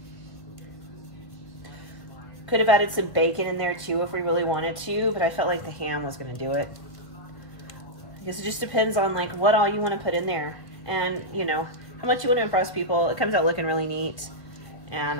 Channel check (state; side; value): late; right; 1.7 ms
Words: Could have added some bacon in there too if we really wanted to, but I felt like the ham was gonna do it. I guess it just depends on like what all you want to put in there, and you know, how much you want to impress people. It comes out looking really neat, and